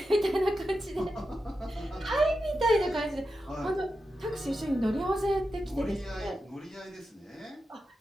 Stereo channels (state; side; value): normal; both; correlation 0.90